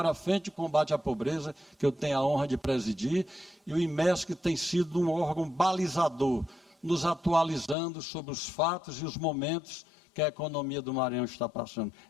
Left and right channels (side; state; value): right; drops out; at 7.8 s